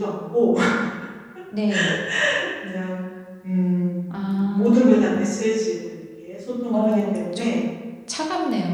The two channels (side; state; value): both; identical; correlation 1.00